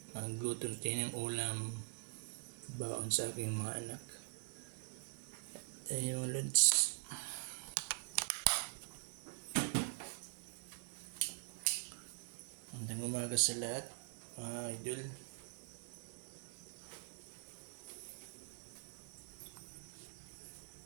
Magluto tayo ng ulam baon sa aking mga anak. Ayun mga lods. Magandang umaga sa lahat mga idol.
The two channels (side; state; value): left; silent; digital silence